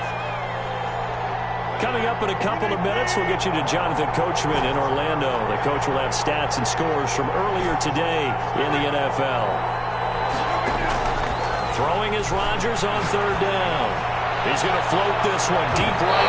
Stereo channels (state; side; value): identical; both; correlation 1.00